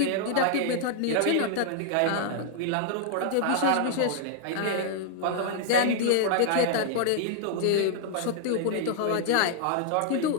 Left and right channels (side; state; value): both; different; correlation -0.01